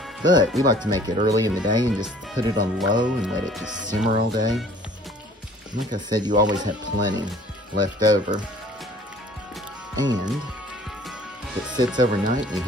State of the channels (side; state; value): both; normal; correlation 0.52